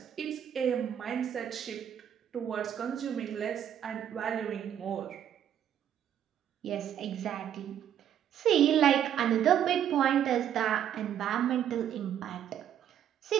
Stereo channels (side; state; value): left; quieter; 9.9 dB